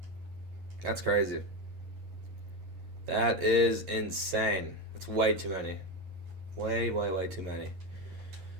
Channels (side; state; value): left; late; 11 ms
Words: That's crazy. That is insane. That's way too many. Way too many.